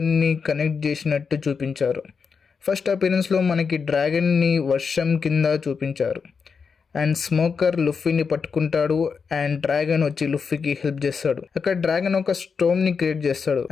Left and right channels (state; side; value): quieter; right; 5.7 dB